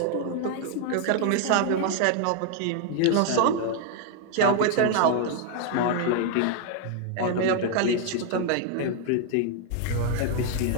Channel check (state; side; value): different; both; correlation 0.00